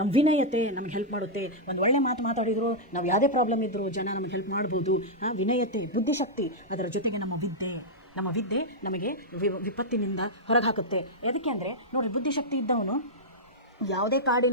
ವಿನಯತೆ ನಮ್ಗೆ ಹೆಲ್ಪ್ ಮಾಡುತ್ತೆ. ಒಂದು ಒಳ್ಳೆ ಮಾತು ಮಾತಾಡಿದ್ರು, ನಾವು ಯಾವುದೇ ಪ್ರಾಬ್ಲಮ್ ಇದ್ದರೂ ಜನ ನಮಗೆ ಹೆಲ್ಪ್ ಮಾಡ್ಬೋದು. ವಿನಯತೆ, ಬುದ್ಧಿಶಕ್ತಿ, ಅದರ ಜೊತೆಗೆ ನಮ್ಮ ವಿದ್ಯೆ ನಮಗೆ ವಿಪತ್ತಿನಿಂದ ಹೊರಗೆ ಹಾಕುತ್ತೆ. ಅದಕ್ಕೆ ಅಂದರೆ ನೋಡಿರಿ, ಬುದ್ಧಿಶಕ್ತಿ ಇದ್ದವನು ಯಾವುದೇ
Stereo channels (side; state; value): both; normal; correlation -0.07